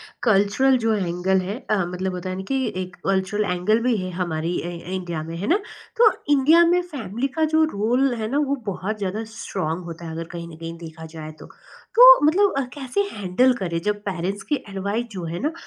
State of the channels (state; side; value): identical; both; correlation 1.00